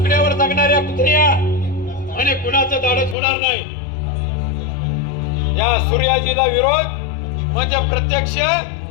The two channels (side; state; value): right; drops out; at 3.2 s